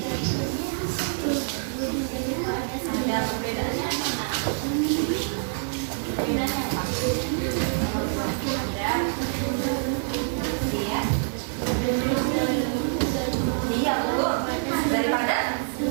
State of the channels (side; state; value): left; silent; digital silence